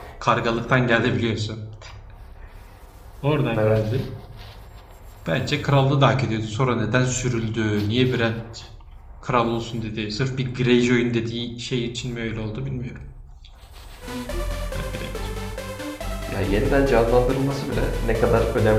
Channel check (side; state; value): both; identical; correlation 1.00